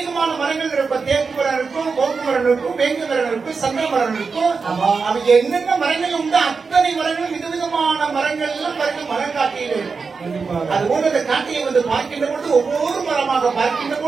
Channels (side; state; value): left; quieter; 4.9 dB